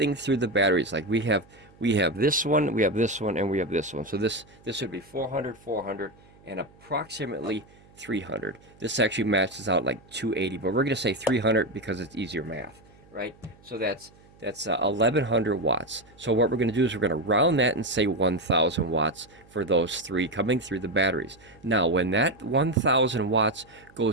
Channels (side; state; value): right; noise; hum, 27 dB below the sound